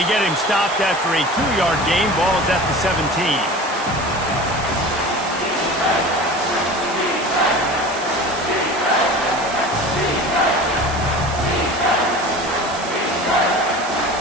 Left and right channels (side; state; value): right; noise; hiss, 13 dB below the sound